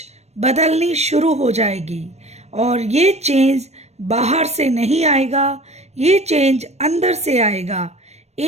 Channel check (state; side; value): late; left; 0.31 ms